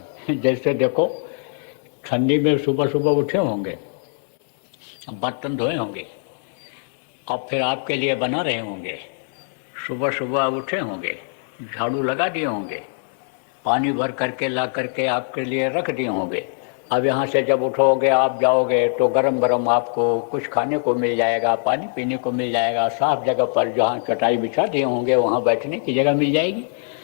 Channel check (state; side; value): silent; right; 64 dB below the other